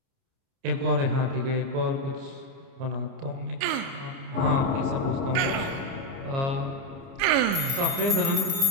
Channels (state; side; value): late; left; 29 ms